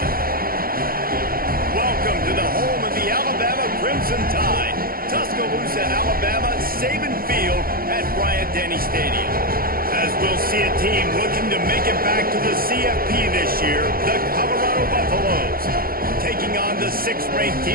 Welcome to the home of the Alabama Crimson Tide. Tuscaloosa, Alabama, Saban Field at Bryant-Denny Stadium. As we'll see a team looking to make it back to the CFP this year, the Colorado Buffaloes, taking on the 6th-ranked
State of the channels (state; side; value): late; left; 0.42 ms